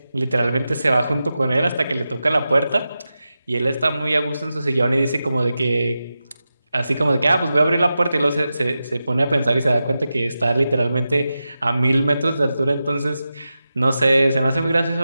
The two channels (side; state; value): both; inverted; correlation -0.92